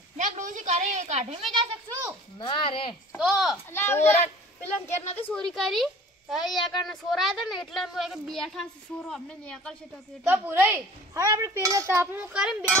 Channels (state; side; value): normal; both; correlation 0.46